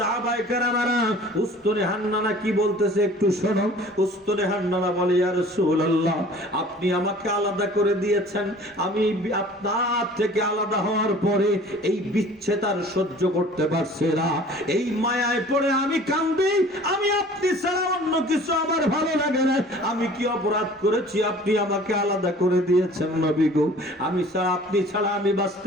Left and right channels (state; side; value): normal; both; correlation 0.48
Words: কেরামেরা, উস্তুনে হান্নানা কি বলতেছে একটু শোনো। উস্তুনে হান্নানা বলে, ইয়া রাসূলুল্লাহ, আপনি আমাকে আলাদা করে দিয়েছেন, আমি আপনার থেকে আলাদা হওয়ার পরে এই বিচ্ছেদ আর সহ্য করতে পারছি না, এই মায়ায় পড়ে আমি কাঁদি, আমি আপনি ছাড়া অন্য কিছু আমার ভালো লাগে না। আমি কি অপরাধ করেছি আপনি আমাকে আলাদা করে দিয়েছেন নবী গো? আমি ছাড়া, আপনি ছাড়া আমি